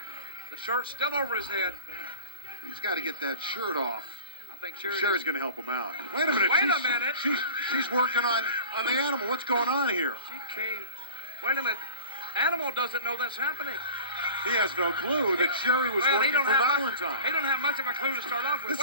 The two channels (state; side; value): inverted; both; correlation -0.37